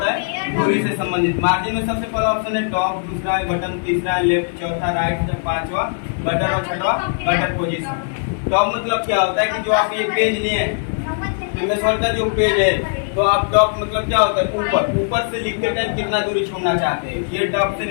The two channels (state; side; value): silent; right; digital silence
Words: है, दूरी से संबंधित। मार्जिन में सबसे पहला ऑप्शन है टॉप, दूसरा है बटन, तीसरा है लेफ्ट, चौथा राइट, पांचवा बटन और छठवा गटर पोजीशन। टॉप मतलब क्या होता है कि जो आप ये पेज लिए हैं, का जो पेज है, तो आप टॉप मतलब क्या होता है, ऊपर से लिखते टाइम कितना दूरी छोड़ना चाहते हैं, ये टॉप से